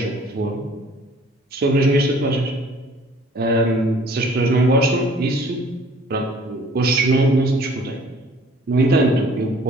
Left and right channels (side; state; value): both; normal; correlation 0.54